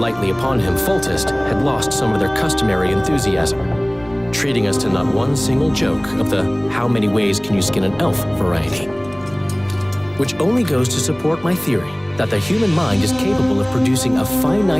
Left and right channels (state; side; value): noise; left; rumble, 24 dB below the sound